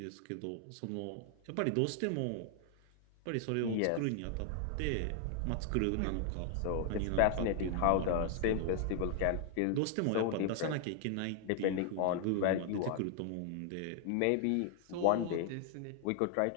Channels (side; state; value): both; different; correlation 0.00